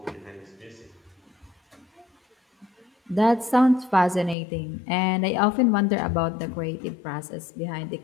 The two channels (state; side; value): drops out; right; at 4.4 s